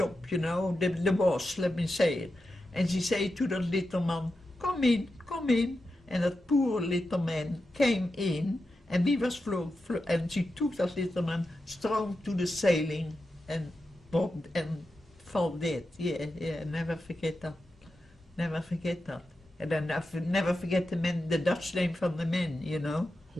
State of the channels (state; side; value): normal; both; correlation 0.90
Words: you know, the boss, let me say it. And she said to that little man, come in. And that poor little man came in, and we was and she took that little man strong to the ceiling and fell dead. Yeah, never forget that. Never forget that. And then I never forget the Dutch name from the man, you know.